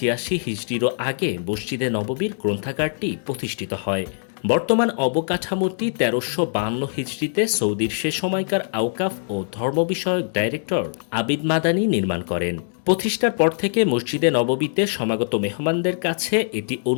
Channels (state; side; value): silent; right; digital silence